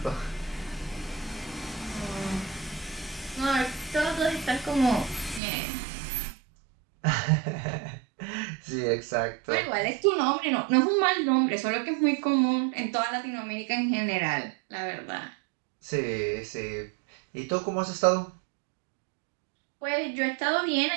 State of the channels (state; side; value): drops out; left; at 5.4 s